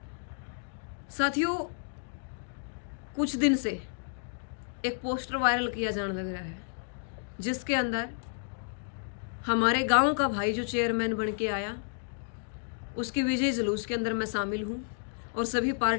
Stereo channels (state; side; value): silent; right; digital silence